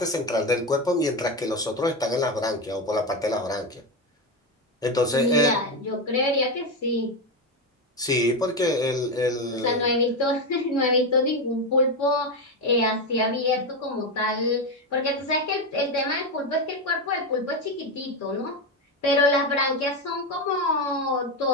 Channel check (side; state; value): both; normal; correlation 0.13